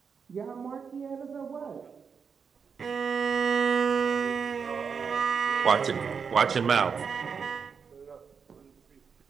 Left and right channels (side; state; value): left; quieter; 6.1 dB